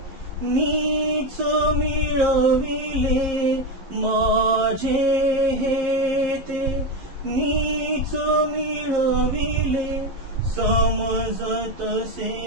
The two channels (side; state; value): left; late; 11 ms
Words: मीच मिळविले, माझे हे ते मीच मिळविले, समजतसे